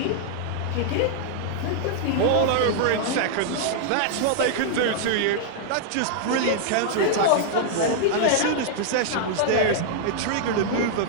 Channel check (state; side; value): different; both; correlation -0.01